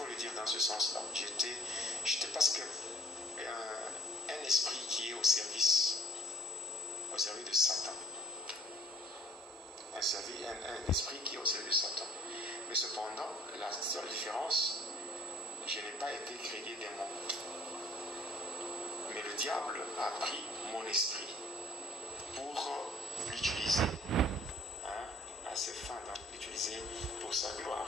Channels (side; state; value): both; normal; correlation 0.54